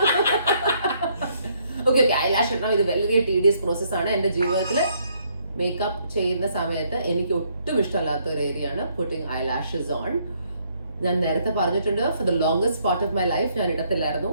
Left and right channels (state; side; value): inverted; both; correlation -0.70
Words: Okay, eyelash ഇടണം. ഇത് വളരെ tedious process ആണ്. എൻ്റെ ജീവിതത്തിൽ മേക്കപ്പ് ചെയ്യുന്ന സമയത്ത് എനിക്ക് ഒട്ടും ഇഷ്ടമല്ലാത്ത ഒരു ഏരിയ ആണ് പുട്ടിങ് ഐലാഷസ് ഓൺ. ഞാൻ നേരത്തെ പറഞ്ഞിട്ടുണ്ട്, for the longest part of my life ഞാൻ ഇടത്തില്ലായിരുന്നു.